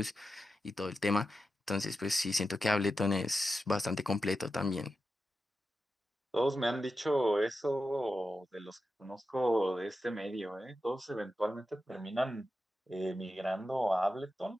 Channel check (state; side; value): normal; both; correlation 0.90